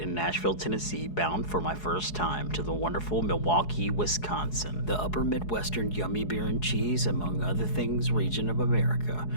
in Nashville, Tennessee, bound for my first time to the wonderful Milwaukee, Wisconsin, the upper Midwestern yummy beer and cheese, among other things, region of America,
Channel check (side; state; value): right; late; 4.7 ms